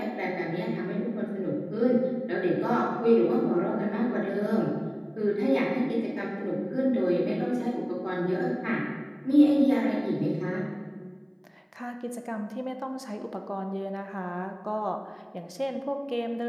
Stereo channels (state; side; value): identical; both; correlation 1.00